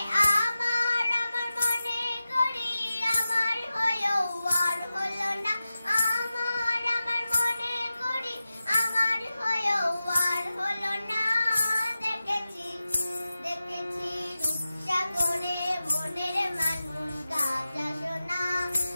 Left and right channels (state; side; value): inverted; both; correlation -0.94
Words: আমার আমার মনে করি, আমার হয়েও আর হলো না। আমার আমার মনে করি, আমার হয়েও আর হলো না। দেখেছি দেখেছি রূপসাগরে মনের মানুষ কাঁচা সোনা।